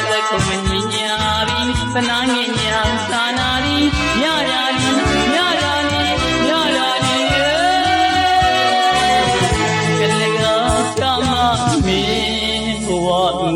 သက္ကုမမြညာရီသနာငင်ညာသာနာရီညရာရီညရာရီညရာရီကလေးကချမမင်းဘဝင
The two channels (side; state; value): both; identical; correlation 1.00